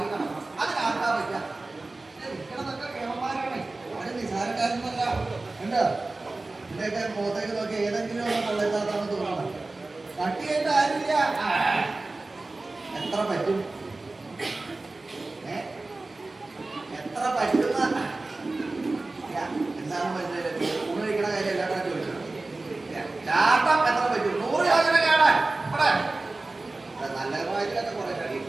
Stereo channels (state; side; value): quieter; left; 3.2 dB